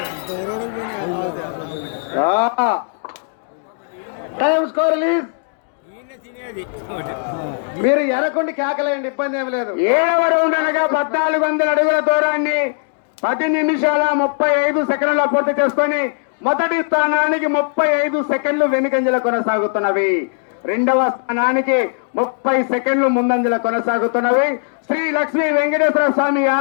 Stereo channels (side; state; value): right; silent; digital silence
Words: టైం స్కోర్ రిలీజ్. మీరు ఎనకొండి కేకలేయండి, ఇబ్బంది ఏమి లేదు. 7వ రౌండ్ అనగా 1400 అడుగుల దూరాన్ని 10 నిమిషాల 35 సెకండ్ల పూర్తి చేసుకొని మొదటి స్థానానికి 35 సెకండ్లు వెనుకంజల కొనసాగుతున్నవి. 2వ స్థానానికి 30 సెకండ్లు ముందంజల కొనసాగుతున్నవి. శ్రీ లక్ష్మీ వెంకటేశ్వర స్వామి